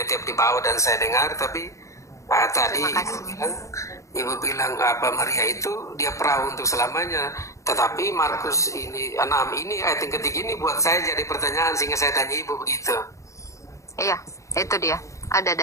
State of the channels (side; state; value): right; late; 0.15 ms